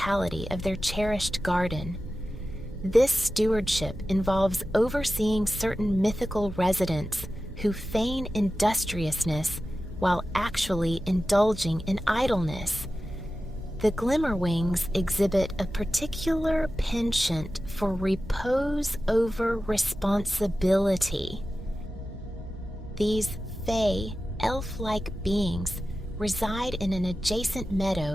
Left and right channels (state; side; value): normal; both; correlation 0.94